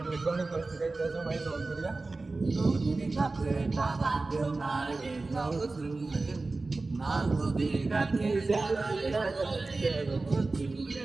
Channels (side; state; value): left; quieter; 3.5 dB